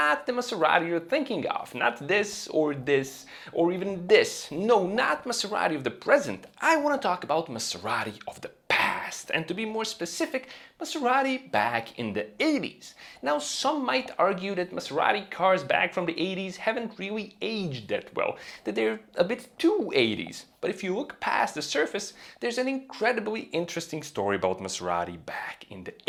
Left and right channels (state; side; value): identical; both; correlation 1.00